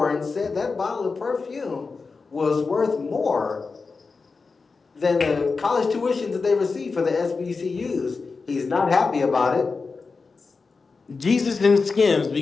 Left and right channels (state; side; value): quieter; right; 4.4 dB